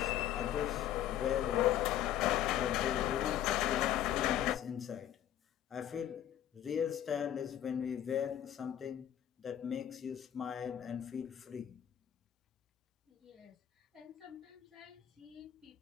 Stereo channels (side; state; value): right; quieter; 11.3 dB